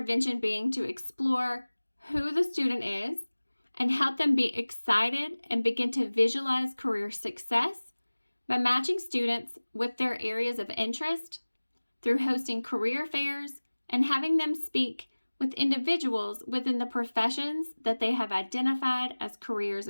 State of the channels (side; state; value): both; inverted; correlation -1.00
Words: being to explore who the student is and help them be excited and begin to visualize career success by matching students with their areas of interest through hosting career fairs and having them speak with individuals within the professions that they have identified as careers